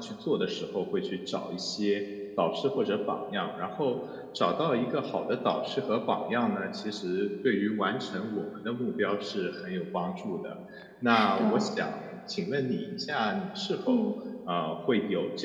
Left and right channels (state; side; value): identical; both; correlation 1.00